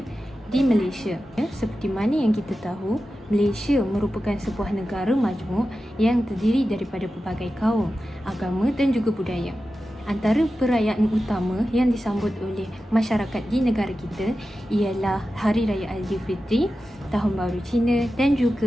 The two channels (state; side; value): normal; both; correlation 0.93